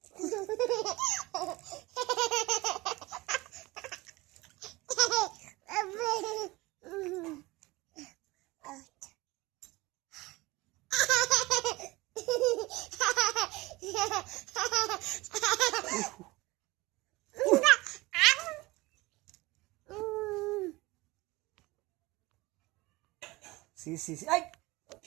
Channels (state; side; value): quieter; left; 21.4 dB